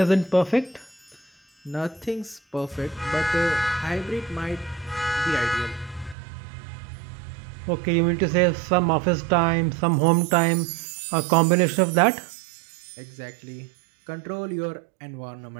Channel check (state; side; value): drops out; left; at 6.2 s